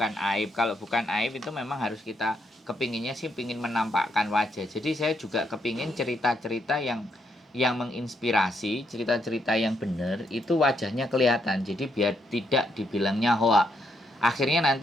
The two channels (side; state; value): both; normal; correlation 0.77